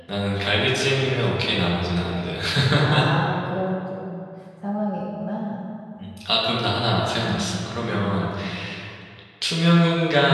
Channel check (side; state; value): both; identical; correlation 1.00